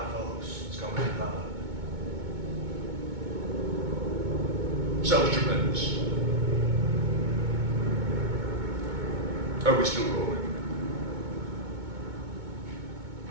folks. It's coming in hot. Sounds tremendous. Are we still rolling?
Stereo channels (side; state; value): left; late; 2.2 ms